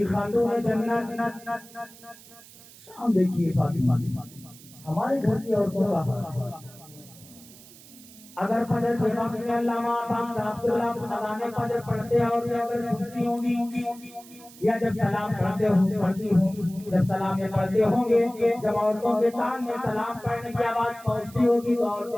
خاتون جنت. شام دیکھیے فاطمہ, ہمارے گھر کی عورتوں کا حال, اگر فجر کے وقت میں علامہ صاحب اذان فجر پڑھتے ہیں اور اگر سنتی ہوں گی یا جب سلام پڑھتے ہوں جب سلام پڑھتے ہوں گے, جب عورتوں کے کان میں سلام پڑھنے کی آواز پہنچتی ہوگی تو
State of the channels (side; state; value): right; noise; hiss, 21 dB below the sound